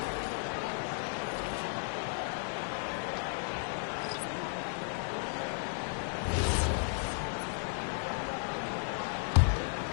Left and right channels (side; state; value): right; silent; 55 dB below the other